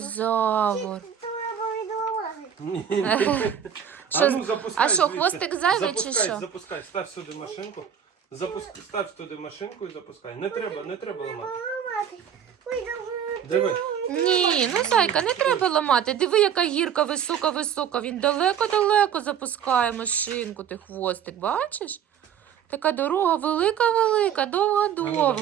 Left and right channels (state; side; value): quieter; left; 8.6 dB